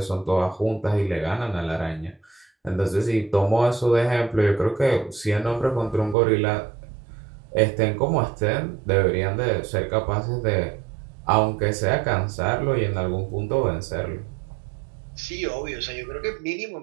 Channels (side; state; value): left; drops out; at 6.2 s